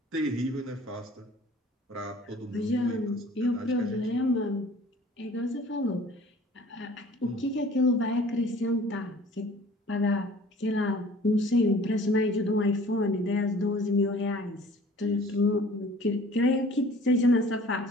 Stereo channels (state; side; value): normal; both; correlation 0.49